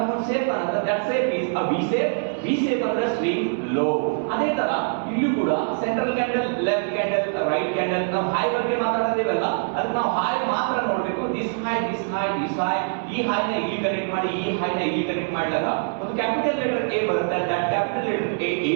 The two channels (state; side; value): silent; left; 63 dB below the other